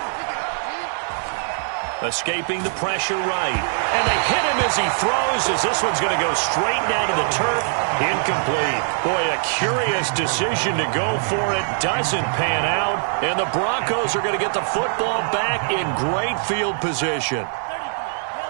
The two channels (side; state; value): left; silent; digital silence